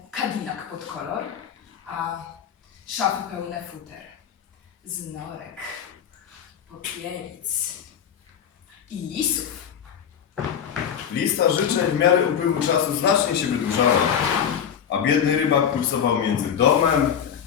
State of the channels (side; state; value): right; quieter; 8.3 dB